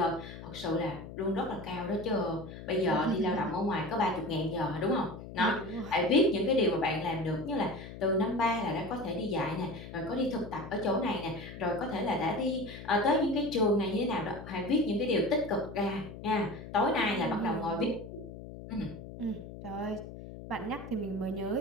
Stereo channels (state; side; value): noise; left; hum, 12 dB below the sound